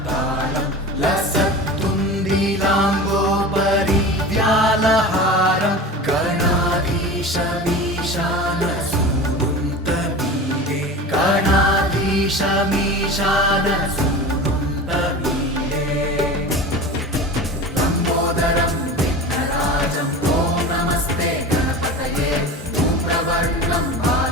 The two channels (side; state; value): both; normal; correlation 0.32